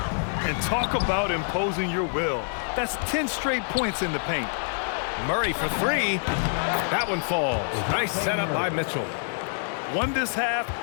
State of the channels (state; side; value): silent; right; digital silence